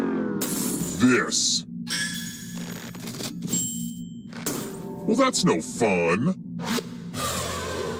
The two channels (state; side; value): identical; both; correlation 1.00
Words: this? Well, that's no fun.